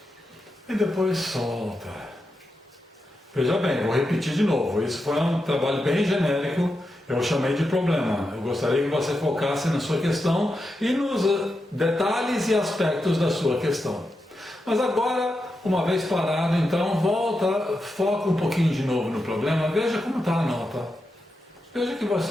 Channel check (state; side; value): normal; both; correlation 0.88